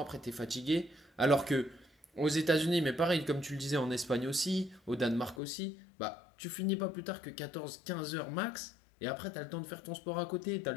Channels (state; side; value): drops out; right; at 5.4 s